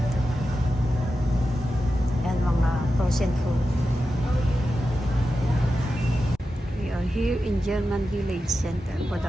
Yan mga frozen food. We are here in German Village Center for the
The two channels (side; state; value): both; normal; correlation 0.91